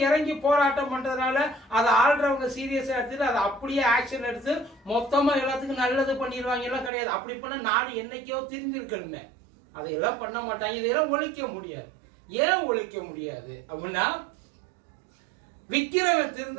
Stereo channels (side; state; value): left; drops out; at 6.9 s